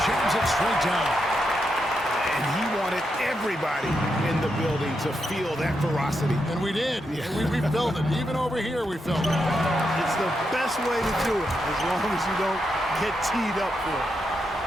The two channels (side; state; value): both; normal; correlation 0.83